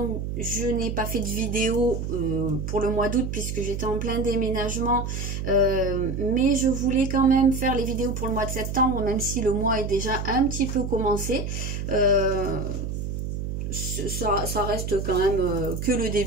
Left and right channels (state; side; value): noise; right; hum, 4 dB below the sound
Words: je n'ai pas fait de vidéo pour le mois d'août puisque j'étais en plein déménagement, mais je voulais quand même faire les vidéos pour le mois de septembre, même si le mois est déjà un petit peu commencé. Ça reste quand même que le